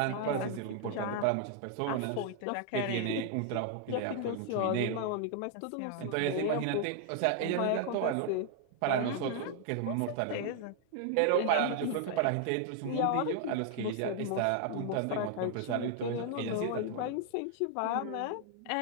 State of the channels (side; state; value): both; different; correlation 0.00